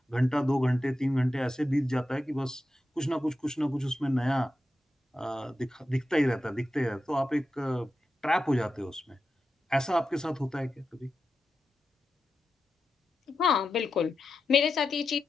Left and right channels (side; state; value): both; normal; correlation 0.90